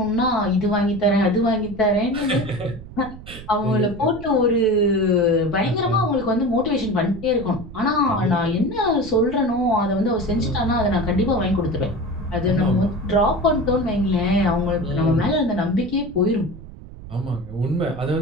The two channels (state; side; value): noise; right; rumble, 15 dB below the sound